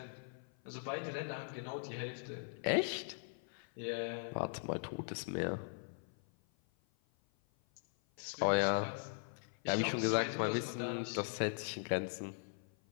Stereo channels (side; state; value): right; silent; 51 dB below the other